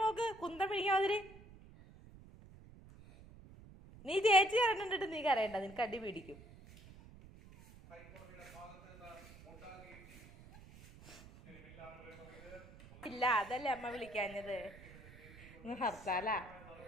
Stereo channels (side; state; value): right; noise; rumble, 19 dB below the sound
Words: നോക്ക് കുന്തം പിടിക്കാതിരി. നീ ചേച്ചി കരണ്ടിട്ട് നീ കരയണ്ട, നിനക്ക് അടി പിടിക്കും. ഇല്ല അതല്ലേ അമ്മ വിളിക്കാഞ്ഞത്. ഹർത്താലാ.